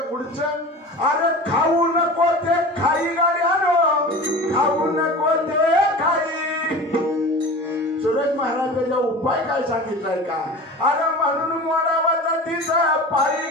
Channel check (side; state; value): both; normal; correlation 0.35